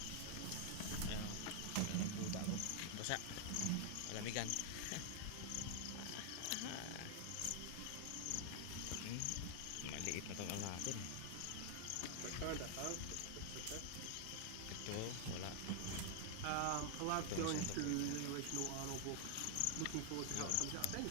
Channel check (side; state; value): both; different; correlation 0.00